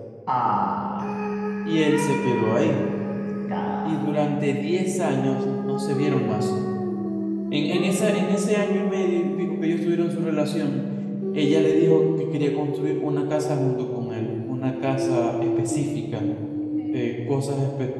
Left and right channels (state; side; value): identical; both; correlation 1.00